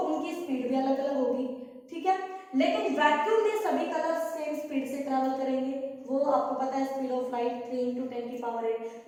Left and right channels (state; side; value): identical; both; correlation 1.00